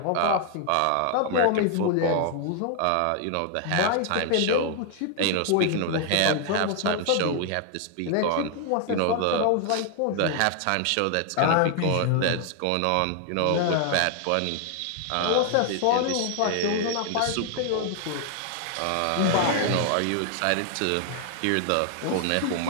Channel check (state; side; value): different; both; correlation 0.00